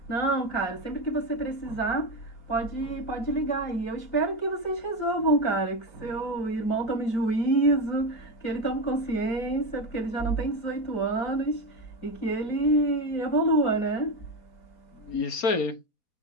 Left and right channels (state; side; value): late; right; 4.3 ms